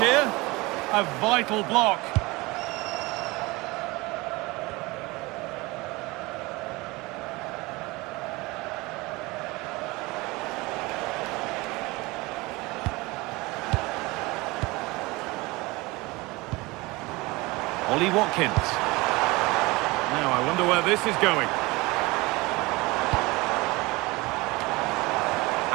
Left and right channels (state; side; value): quieter; left; 22.9 dB